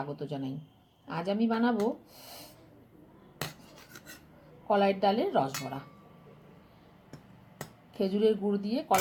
জানাই। আজ আমি বানাবো কলাইয়ের ডালের রসবড়া। খেজুরের গুড় দিয়ে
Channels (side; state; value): both; identical; correlation 1.00